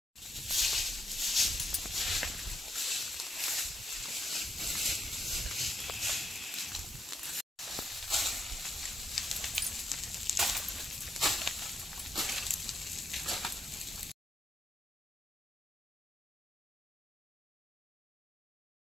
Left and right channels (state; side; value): normal; both; correlation 0.79